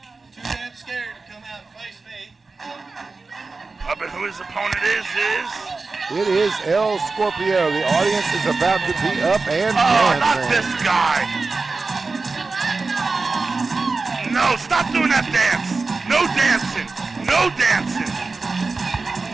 But who his opponent is? It is El Scorpio. The audience is about to be up and dancing. Not this guy. No, stop doing that dance. No dancing. No dancing.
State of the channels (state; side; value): quieter; left; 3.9 dB